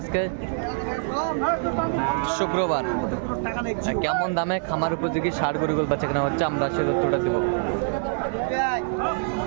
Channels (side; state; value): left; silent; digital silence